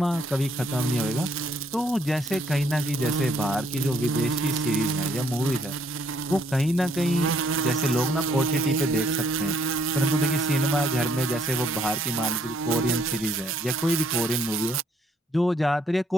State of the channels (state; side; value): normal; both; correlation 0.67